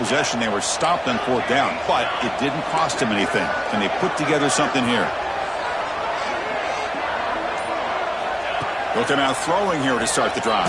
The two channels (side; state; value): both; identical; correlation 1.00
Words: they were stopped on 4th down, but it didn't cost them anything. Can they put together something here? They'll come out throwing here to start the